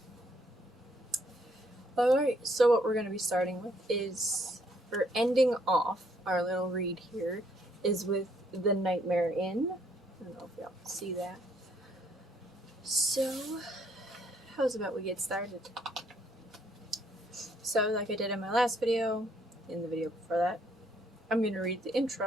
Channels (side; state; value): both; normal; correlation 0.68